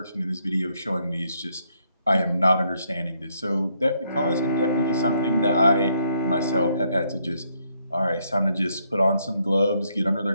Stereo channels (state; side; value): inverted; both; correlation -0.73